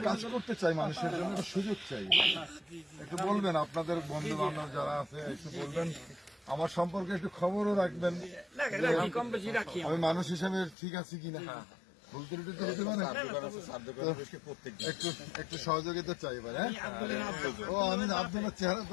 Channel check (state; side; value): drops out; right; at 10.8 s